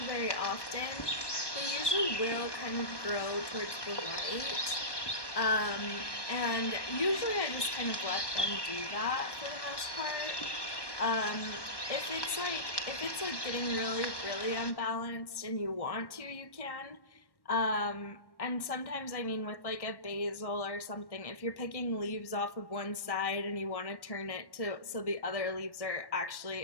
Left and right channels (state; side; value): late; right; 1.1 ms